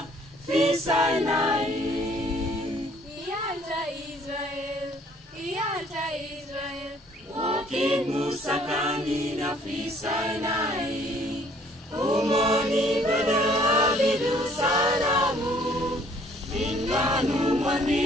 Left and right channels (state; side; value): normal; both; correlation 0.59